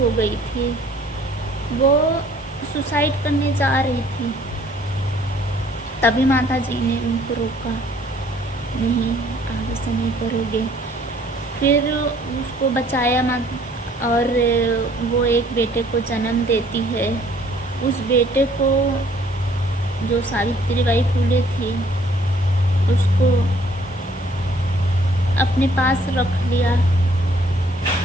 गई थी, वो सुसाइड करने जा रही थी, तभी माता जी ने उनको रोका, नहीं आगे से नहीं करोगे। फिर उसको बचाया माता, और वो एक बेटे को जन्म देती है। उस बेटे को जो सावित्रीबाई फुले थी उसको अपने पास रख लिया,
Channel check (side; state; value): both; normal; correlation 0.60